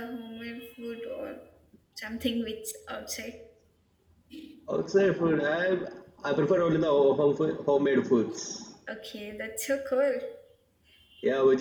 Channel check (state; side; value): identical; both; correlation 1.00